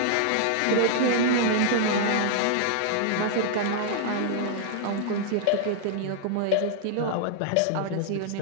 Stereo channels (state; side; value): different; both; correlation -0.01